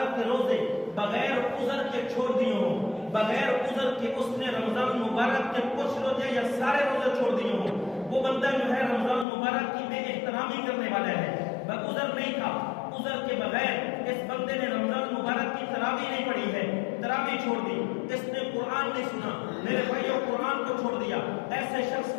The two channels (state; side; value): drops out; right; at 9.2 s